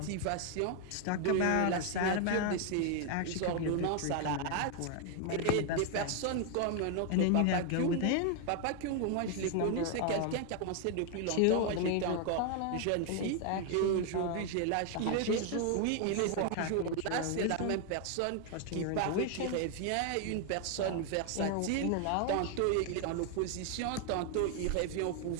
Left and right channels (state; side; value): different; both; correlation 0.00